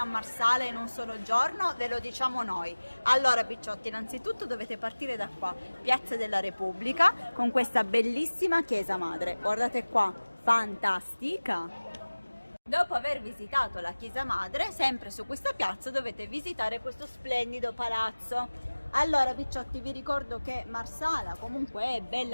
Marsala in un solo giorno? Ve lo diciamo noi. Allora picciotti, innanzitutto dovete partire da qua, Piazza della Repubblica, con questa bellissima chiesa madre. Guardate qua, fantastica! Dopo aver visitato la chiesa madre, sempre su questa piazza dovete visitare questo splendido palazzo. Allora picciotti, vi ricordo che Marsala comunque è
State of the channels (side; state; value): both; inverted; correlation -1.00